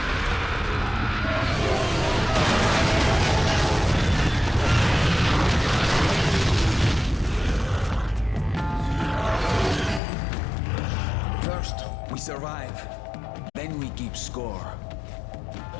survive, then we keep score.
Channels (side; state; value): right; drops out; at 10.0 s